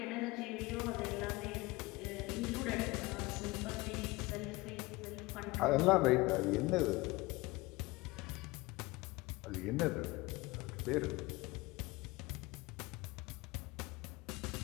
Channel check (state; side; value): quieter; right; 22.0 dB